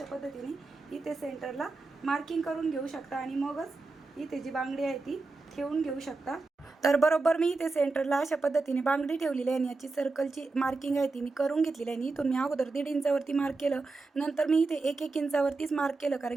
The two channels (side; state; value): left; quieter; 3.7 dB